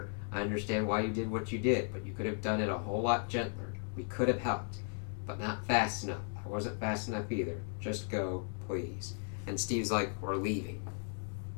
I understand why you did what you did, but you could have done it a whole lot gentler. We could have helped, but not fast enough. I wasn't fast enough either. Just go, please. And Steve's like, we're leaving.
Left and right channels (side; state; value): right; silent; 54 dB below the other